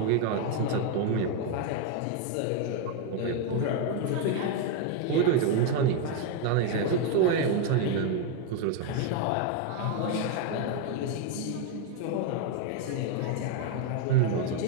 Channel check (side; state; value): both; different; correlation 0.01